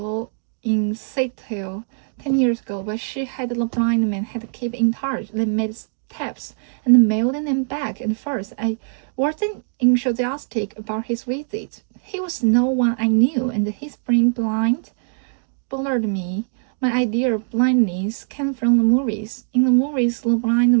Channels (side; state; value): left; silent; digital silence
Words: 10 years ago, but she had the blind man had to keep in touch. They made tapes and mailed them back and forth. I wasn't enthusiastic about his visit. He was no one I knew, and his being blind bothered me. My idea of blindness came from the movies. In the movies, the blind